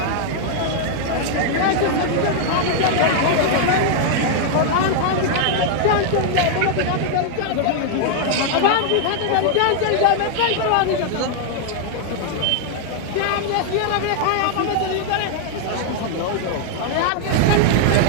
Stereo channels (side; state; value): both; different; correlation 0.00